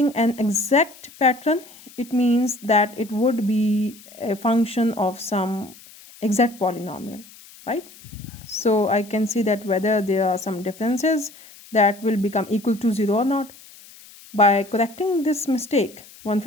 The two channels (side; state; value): left; noise; hiss, 21 dB below the sound